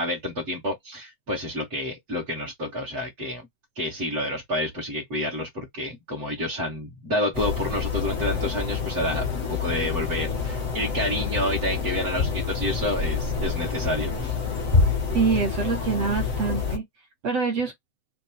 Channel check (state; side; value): late; left; 7.9 ms